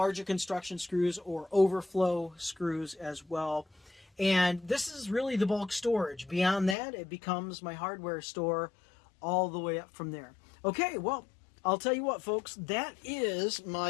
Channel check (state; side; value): drops out; right; at 6.8 s